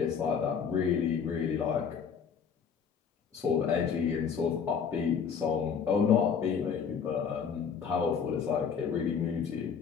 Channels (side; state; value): right; quieter; 6.8 dB